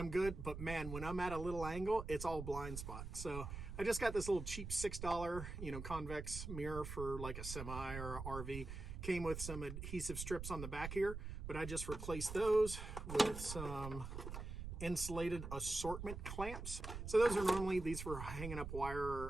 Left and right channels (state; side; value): noise; right; rumble, 7 dB below the sound